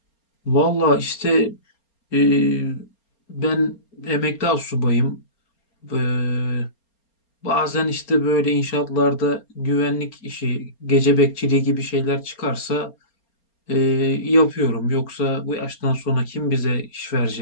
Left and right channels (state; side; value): late; right; 4.3 ms